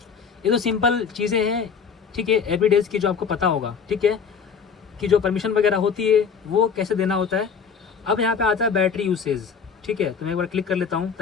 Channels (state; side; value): quieter; right; 6.3 dB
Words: ये तो सिंपल चीज़ें हैं, ठीक है, एवरीडेज की जो आपको पता होगा, ठीक है, कि जो परमिशन वगैरह होती है वो कैसे देना होता है। अब यहाँ पे आता है बैटरी यूसेज, ठीक है, तो मैं एक बार क्लिक कर लेता हूँ